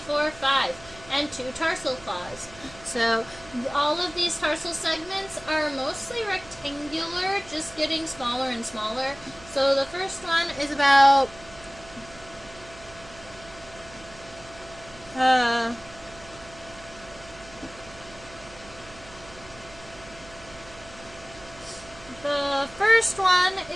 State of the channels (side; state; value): right; noise; hum, 19 dB below the sound